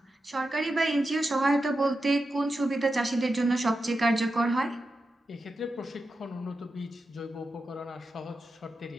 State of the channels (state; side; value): normal; both; correlation 0.89